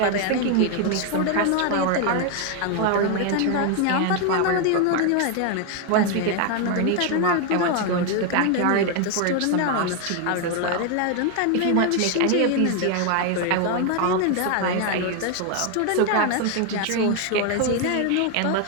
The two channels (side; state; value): both; different; correlation 0.01